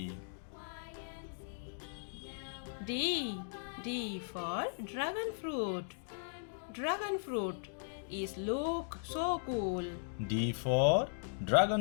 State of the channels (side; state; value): right; silent; digital silence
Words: D for dragon fruit. Dragon fruit is look so cool. D for